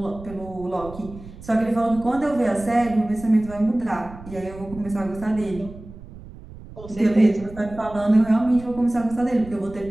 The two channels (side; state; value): right; noise; rumble, 16 dB below the sound